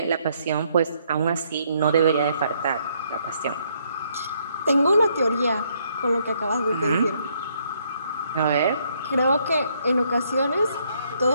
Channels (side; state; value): both; inverted; correlation -0.70